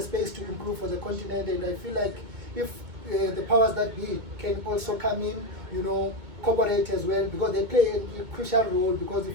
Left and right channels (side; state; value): left; late; 2.2 ms